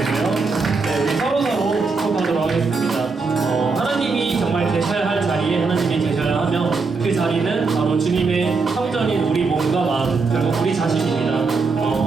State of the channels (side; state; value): left; quieter; 4.4 dB